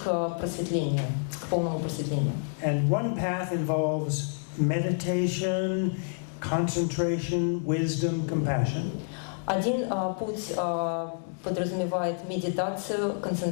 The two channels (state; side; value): silent; right; digital silence